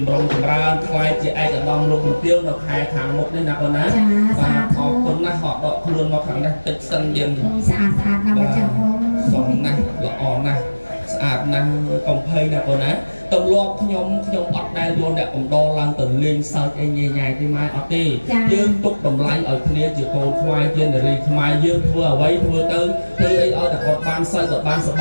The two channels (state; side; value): inverted; both; correlation -1.00